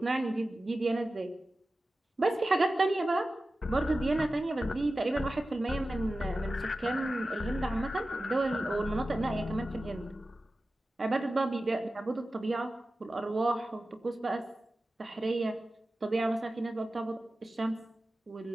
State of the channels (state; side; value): normal; both; correlation 0.95